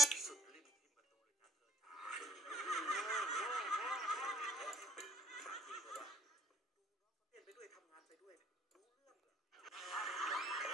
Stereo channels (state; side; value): normal; both; correlation 0.54